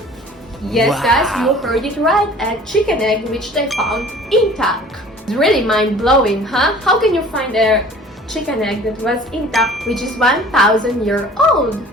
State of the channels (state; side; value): normal; both; correlation 0.47